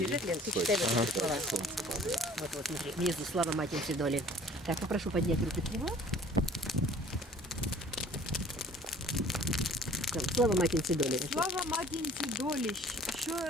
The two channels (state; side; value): normal; both; correlation 0.52